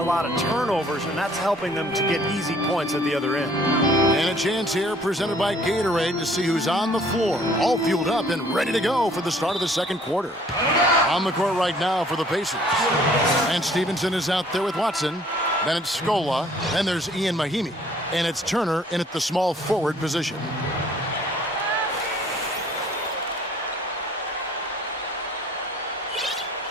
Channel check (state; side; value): normal; both; correlation 0.57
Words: lot of turnovers, and that's helping them to get easy points at the other end. And a chance here presented by Gatorade to see who's on the floor, all fueled up and ready to go for the start of the second quarter. On the court right now for the Pacers. And Stevenson is out there with Watson. Then it's Scola. Then there's Ian Mahimi. And it's Turner in at the small forward position.